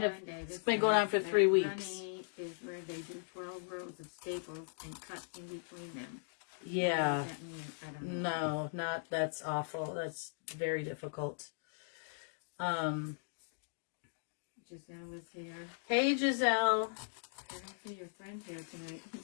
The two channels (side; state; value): right; silent; digital silence